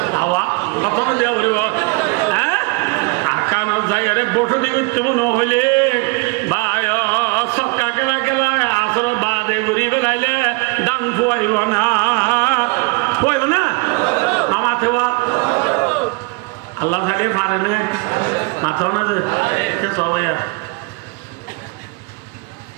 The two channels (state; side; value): quieter; left; 27.9 dB